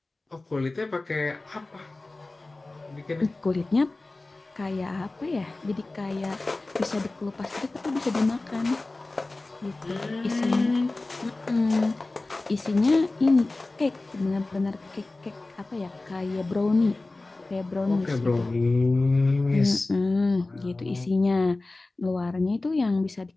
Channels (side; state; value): right; quieter; 3.1 dB